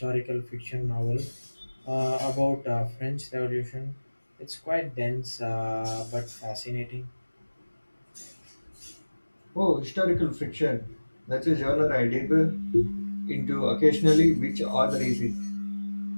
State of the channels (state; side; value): inverted; both; correlation -1.00